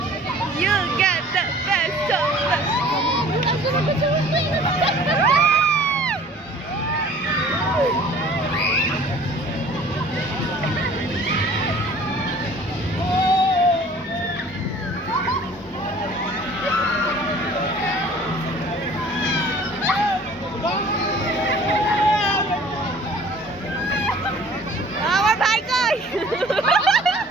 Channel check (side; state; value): both; normal; correlation 0.49